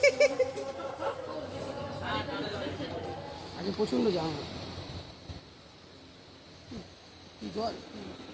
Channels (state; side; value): identical; both; correlation 1.00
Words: আগে প্রচন্ড জাম জল